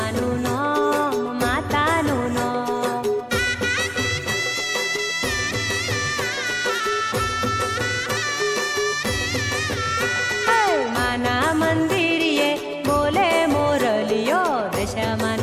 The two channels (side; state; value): both; identical; correlation 1.00